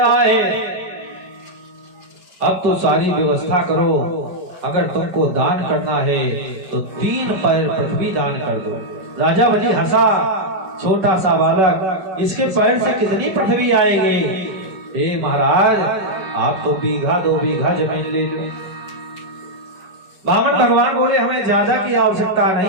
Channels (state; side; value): late; left; 5.4 ms